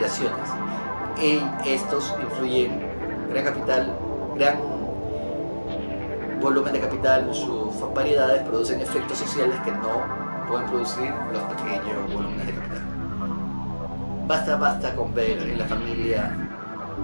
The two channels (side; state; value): both; inverted; correlation -1.00